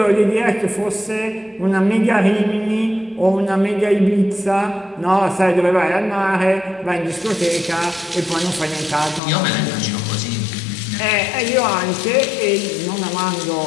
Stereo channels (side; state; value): right; drops out; at 9.2 s